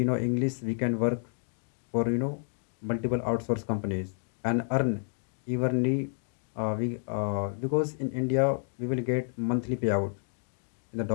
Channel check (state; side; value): silent; right; 58 dB below the other